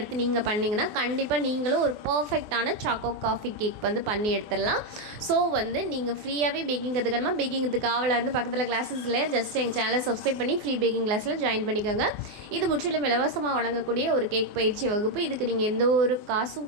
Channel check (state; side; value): late; left; 24 ms